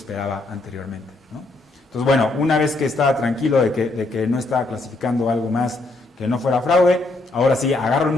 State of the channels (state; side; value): quieter; right; 3.1 dB